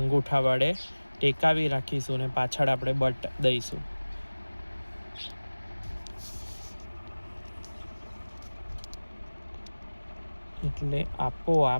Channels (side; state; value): both; inverted; correlation -1.00